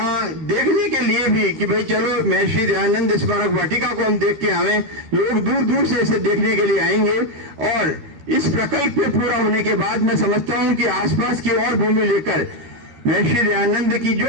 देखने के लिए भी कि भाई चलो महर्षि दयानंद स्मारक वाटिका को हम देख के आवे, लोग दूर दूर से इसे देखने के लिए आएंगे। और इस प्रकल्प के पूरा होने के बाद मैं समझता हूँ कि आसपास की और भूमि लेकर महर्षि दयानंद की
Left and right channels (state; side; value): late; left; 13 ms